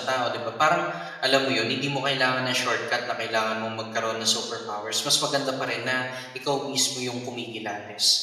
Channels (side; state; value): both; identical; correlation 1.00